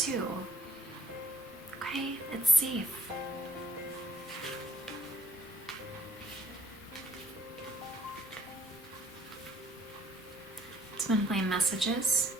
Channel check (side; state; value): both; normal; correlation 0.64